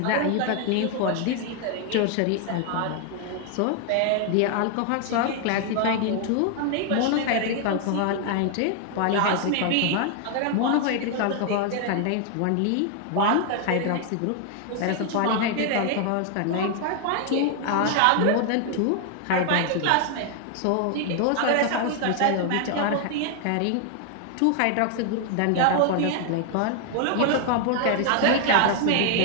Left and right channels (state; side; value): different; both; correlation 0.00